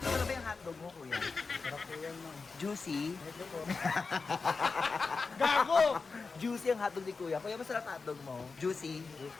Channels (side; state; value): right; quieter; 4.5 dB